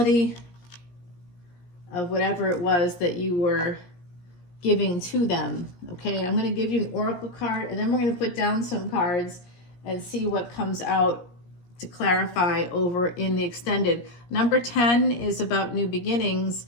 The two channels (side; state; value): right; late; 17 ms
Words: of whatever it was that you were giving to them. Okay, I'm going to give you an oracle card, and then we're going to put down some cards and see what comes out to clarify over in the extended. Number 10 is about new beginnings.